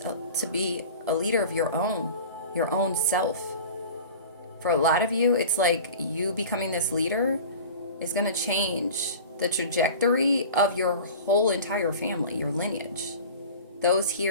be a leader of your own self. For a lot of you, it's like you becoming this leader is going to change the trajectory of your whole entire family, your lineage. Those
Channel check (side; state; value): both; inverted; correlation -0.38